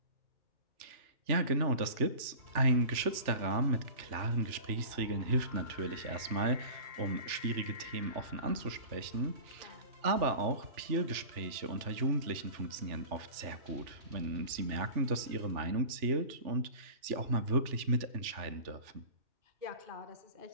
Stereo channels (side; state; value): left; late; 3.4 ms